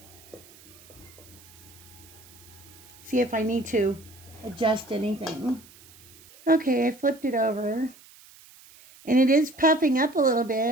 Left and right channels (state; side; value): noise; right; hiss, 23 dB below the sound